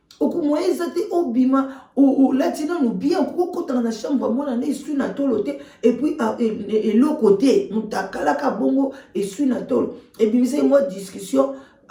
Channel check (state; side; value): identical; both; correlation 1.00